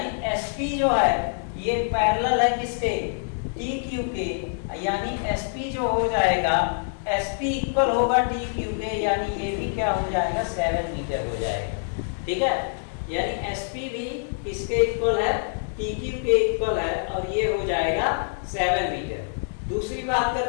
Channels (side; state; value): right; silent; digital silence